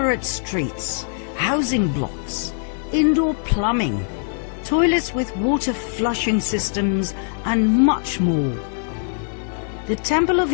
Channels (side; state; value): right; silent; 56 dB below the other